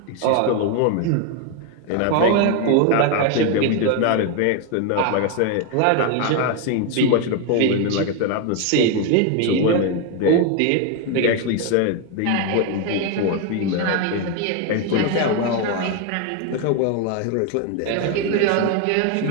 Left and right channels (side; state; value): both; different; correlation 0.01